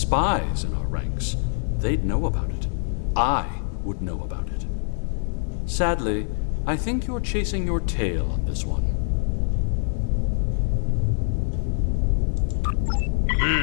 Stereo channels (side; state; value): right; silent; digital silence